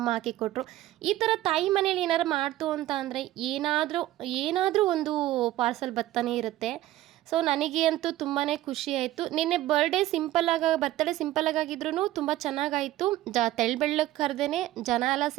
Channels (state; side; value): quieter; left; 15.2 dB